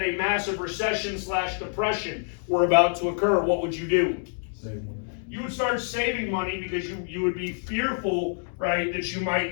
a massive recession / depression were about to occur, what would you do? Save money. You would start saving money because you would be fearful, right, that you might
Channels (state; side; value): silent; right; 60 dB below the other